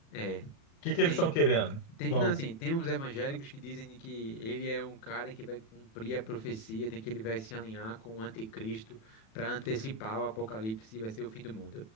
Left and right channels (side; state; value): right; late; 36 ms